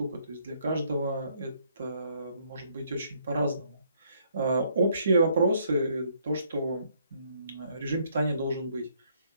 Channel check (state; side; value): inverted; both; correlation -0.68